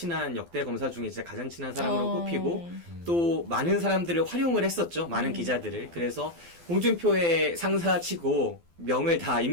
역대 검사 중에 진짜 가장 친한 사람으로 꼽히고 또 많은 사람들을 활용을 했었죠. 많은 기자들을. 그래서 홍준표의 상사치고 명을 다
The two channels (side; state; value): left; late; 12 ms